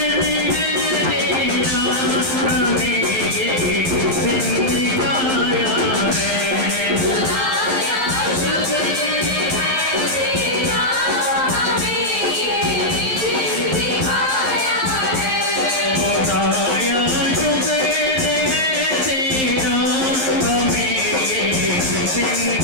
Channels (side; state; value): left; late; 11 ms